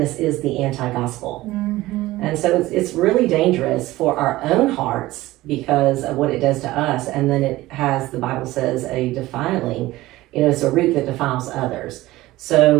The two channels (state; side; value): quieter; left; 17.6 dB